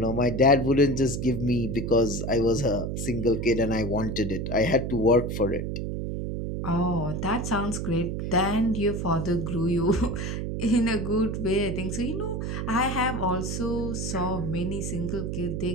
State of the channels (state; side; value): noise; right; hum, 3 dB below the sound